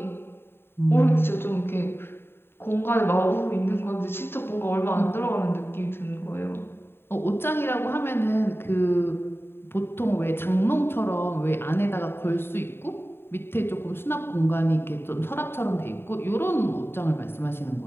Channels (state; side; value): late; right; 0.11 ms